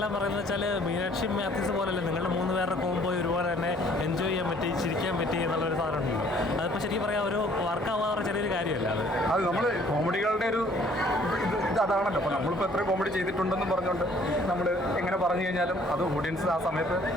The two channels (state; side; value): normal; both; correlation 0.58